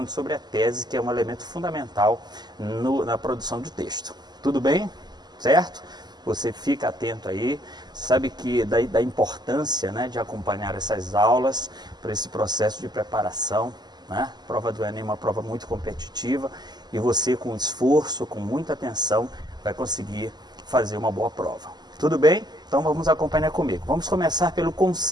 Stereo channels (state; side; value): late; left; 0.20 ms